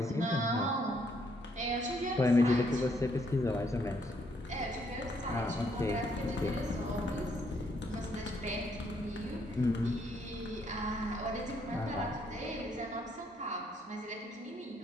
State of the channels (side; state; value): both; normal; correlation 0.71